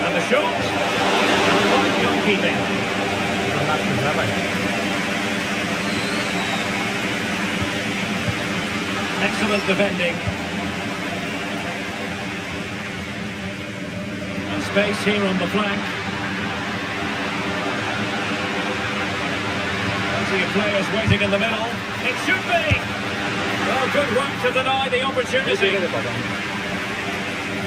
And the shot. And one goalkeeping. Excellent defending. And space here on the flank. Plenty of players waiting in the middle. It should be! Well, good work to deny the opportunity.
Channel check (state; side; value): identical; both; correlation 1.00